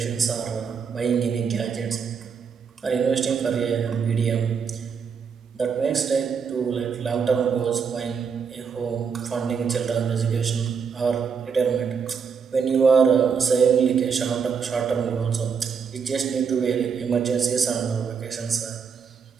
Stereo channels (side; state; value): left; quieter; 6.3 dB